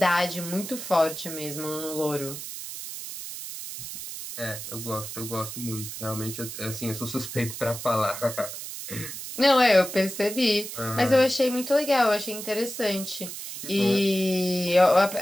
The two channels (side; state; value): right; noise; hiss, 9 dB below the sound